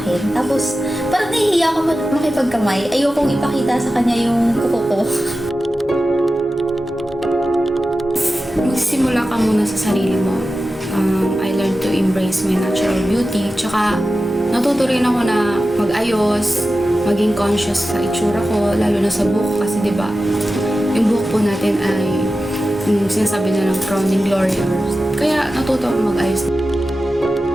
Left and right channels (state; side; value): normal; both; correlation 0.93